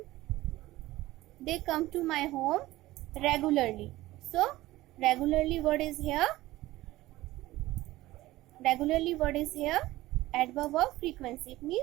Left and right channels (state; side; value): quieter; left; 17.3 dB